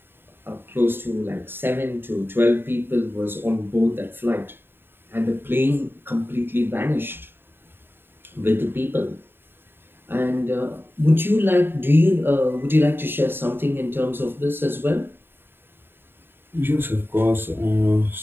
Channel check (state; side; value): late; left; 0.10 ms